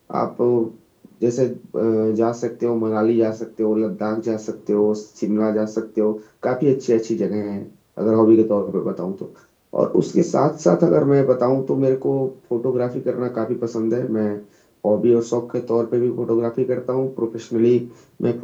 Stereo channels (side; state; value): both; identical; correlation 1.00